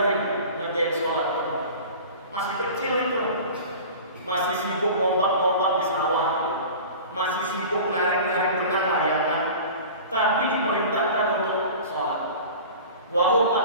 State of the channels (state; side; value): inverted; both; correlation -0.38